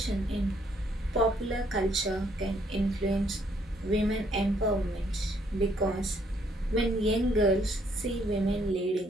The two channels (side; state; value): both; normal; correlation 0.69